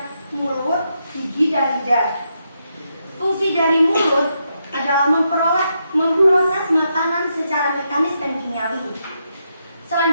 mulut, gigi, dan lidah. Fungsi dari mulut adalah memproses makanan secara mekanis dan kimiawi.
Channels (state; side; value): inverted; both; correlation -0.81